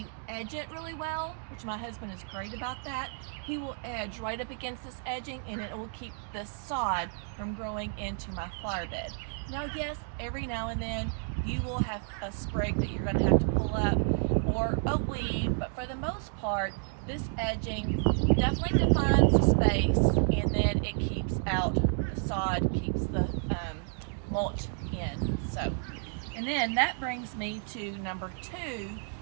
edge it really well, which my husband is great about that, he will edge right up against this edging and it will keep the sod from growing into my flower bed. Now yes, every now and then you will have a sprig that you're gonna have to pull up or a weed, but for the most part, this edging definitely defines the space, and then it keeps out the sod, keeps the mulch in. So, and then that brings me to number 2,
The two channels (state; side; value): silent; left; 57 dB below the other